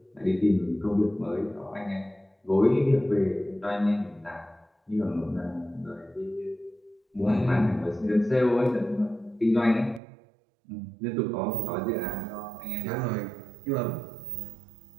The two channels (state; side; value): drops out; left; at 10.0 s